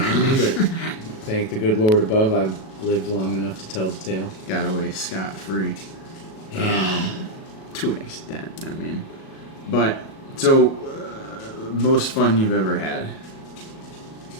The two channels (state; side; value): late; right; 37 ms